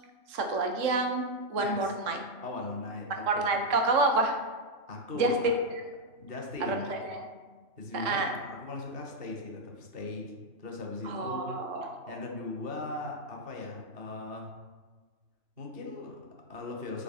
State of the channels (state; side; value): late; left; 3.6 ms